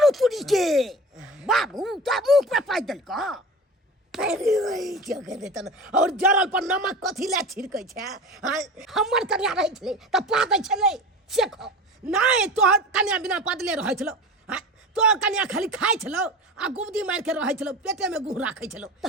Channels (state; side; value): normal; both; correlation 0.33